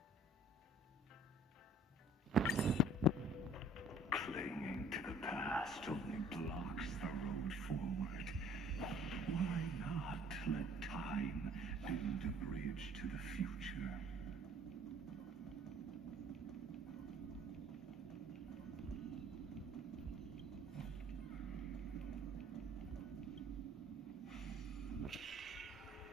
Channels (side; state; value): both; normal; correlation 0.54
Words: Clinging to the past only blocks the road forward. Why not let time build a bridge to the future?